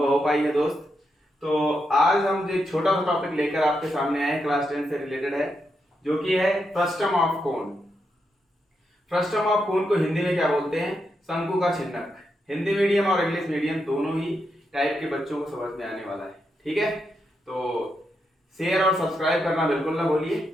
हो पाई है दोस्त। तो आज हम एक छोटा सा टॉपिक लेकर आपके सामने आए, क्लास 10 से रिलेटेड है, जो कि है frustum of cone. Frustum of कोन को हिंदी में क्या बोलते हैं? शंकु का छिन्नक। हिंदी मीडियम और इंग्लिश मीडियम दोनों ही टाइप के बच्चों को समझ में आने वाला है, ठीक है। तो शेयर और सब्सक्राइब करना बिल्कुल ना भूलिए।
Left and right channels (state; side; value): normal; both; correlation 0.83